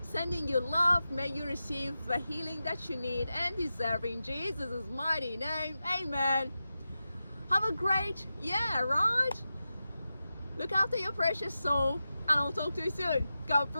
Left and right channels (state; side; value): inverted; both; correlation -0.92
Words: Sending you love. May you receive the healing that you need and deserve in Jesus' mighty name. Amen. Have a great year, right? Look after your precious soul, and I'll talk to you soon. God